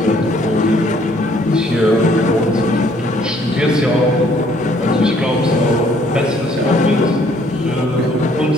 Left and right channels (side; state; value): both; normal; correlation 0.63